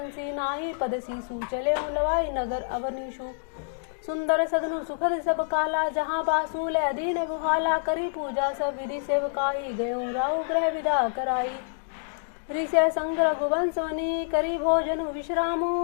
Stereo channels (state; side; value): silent; right; digital silence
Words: नाहि, पद सीसु चले लवाई नगर अवनीशु। सुंदर सदनु सुखद सब काला, जहाँ बासु ले दीन बुहाला। करी पूजा सब विधि सेवकाई, गयो राहु ग्रह विदा कराई। ऋषि संग रघुवंश वनी, करी भोजन